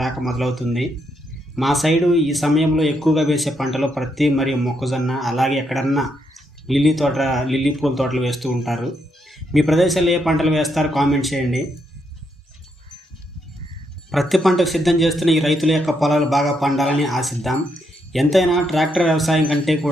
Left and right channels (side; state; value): both; normal; correlation 0.78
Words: రాక మొదలవుతుంది. మా సైడు ఈ సమయంలో ఎక్కువగా వేసే పంటలు ప్రత్తి మరియు మొక్కజొన్న, అలాగే ఎక్కడన్నా లిల్లీ పూల తోటలు వేస్తూ ఉంటారు. మీ ప్రదేశాల్లో ఏ పంటలు వేస్తారో కామెంట్ చేయండి. ప్రతి పంటకు సిద్ధం చేస్తున్న ఈ రైతుల యొక్క పొలాలు బాగా పండాలని ఆశిద్దాం. ఎంతైనా ట్రాక్టర్ వ్యవసాయం కంటే